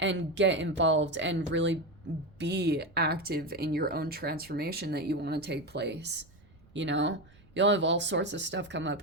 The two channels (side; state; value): right; noise; rumble, 27 dB below the sound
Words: get involved and really be active in your own transformation that you want to take place. You know, you'll have all sorts of stuff come up.